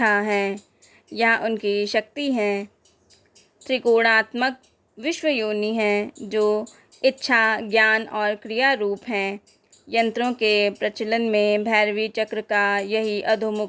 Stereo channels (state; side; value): identical; both; correlation 1.00